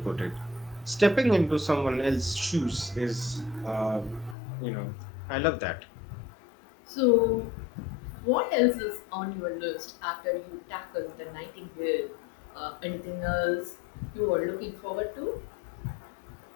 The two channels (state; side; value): drops out; right; at 4.4 s